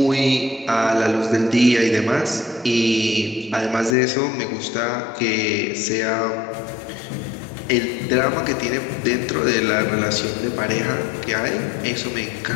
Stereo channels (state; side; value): drops out; right; at 4.0 s